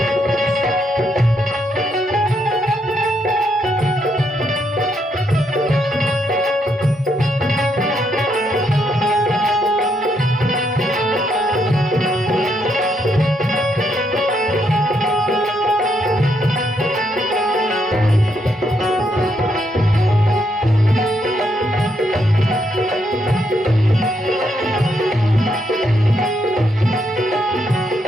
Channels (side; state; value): both; normal; correlation 0.77